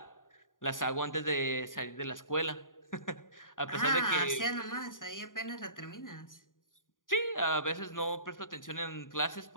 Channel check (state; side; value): late; right; 0.89 ms